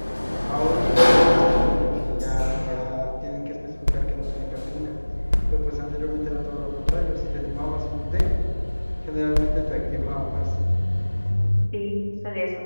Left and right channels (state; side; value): inverted; both; correlation -1.00